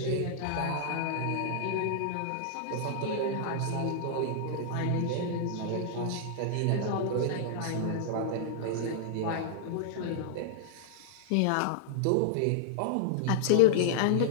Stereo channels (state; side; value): different; both; correlation -0.01